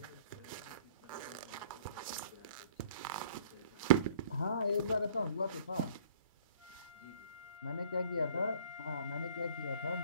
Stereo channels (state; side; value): inverted; both; correlation -0.53